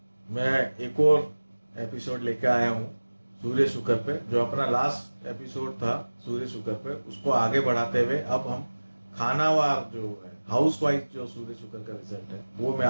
मैं एक और एपिसोड लेके आया हूँ सूर्य शुक्र पे। जो अपना लास्ट एपिसोड था सूर्य शुक्र पे, उसको आगे बढ़ाते हुए अब हम खानावार जो है, हाउस वाइफ जो सूर्य शुक्र का रिजल्ट है वो मैं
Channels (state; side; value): inverted; both; correlation -1.00